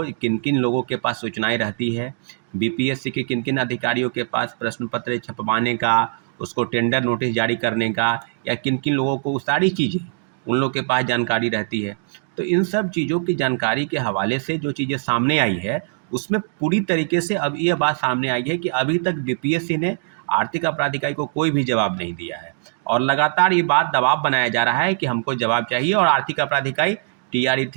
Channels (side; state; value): left; silent; digital silence